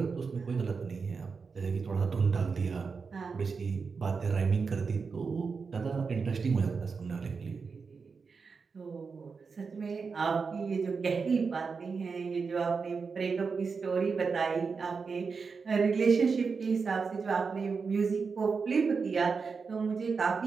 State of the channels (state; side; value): quieter; left; 5.1 dB